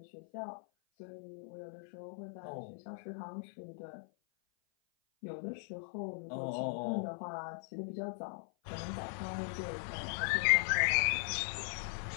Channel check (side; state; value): right; silent; 52 dB below the other